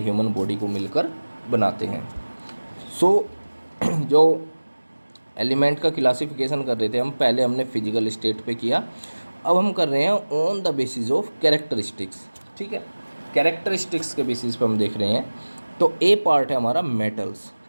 बॉडी को मिलकर बनाते हैं। सो जो एलिमेंट का क्लासिफिकेशन कर रहे थे हम, पहले हमने फिजिकल स्टेट पे किया, अब हम कर रहे हैं on the basis of characteristics. ठीक है, कैरेक्टरिस्टिक्स के बेसिस पे हम देख रहे हैं। तो ए पार्ट है हमारा मेटल्स।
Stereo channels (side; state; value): both; inverted; correlation -1.00